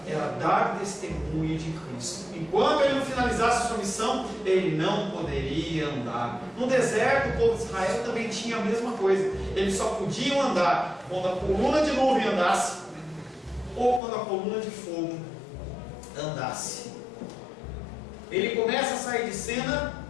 era dar testemunho de Cristo. Enquanto ele não finalizasse a sua missão, ele não poderia andar. No deserto, o povo de Israel também tinha a mesma coisa. Eles só podiam andar quando a coluna de nuvem andasse, ou quando a coluna de fogo andasse. Ele começa a sair de cena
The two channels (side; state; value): right; drops out; at 14.0 s